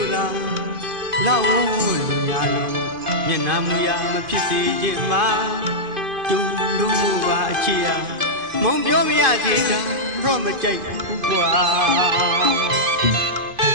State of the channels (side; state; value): left; late; 2.5 ms